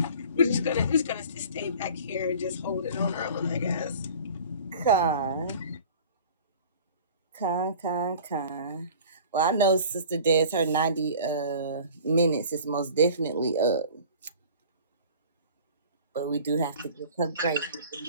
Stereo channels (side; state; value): both; inverted; correlation -0.44